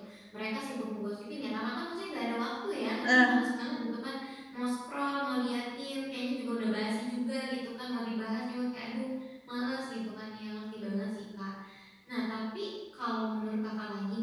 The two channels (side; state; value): both; identical; correlation 1.00